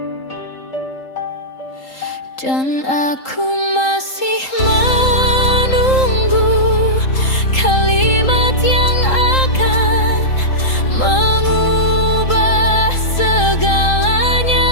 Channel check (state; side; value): late; right; 3.8 ms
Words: dan aku masih menunggu kalimat yang akan mengubah